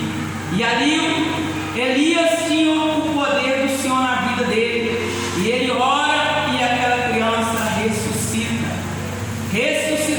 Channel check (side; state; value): both; identical; correlation 1.00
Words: E ali Elias tinha o poder do Senhor na vida dele. E ele ora e aquela criança ressuscita.